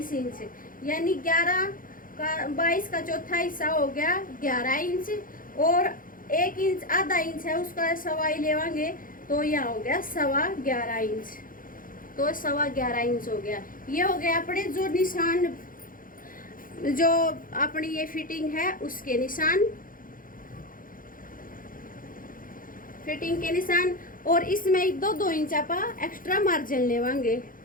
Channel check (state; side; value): late; right; 0.40 ms